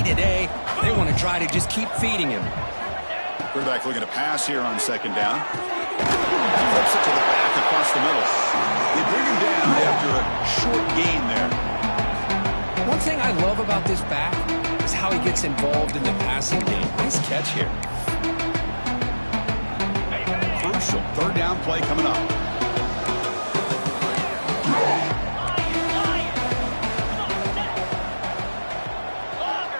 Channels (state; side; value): inverted; both; correlation -1.00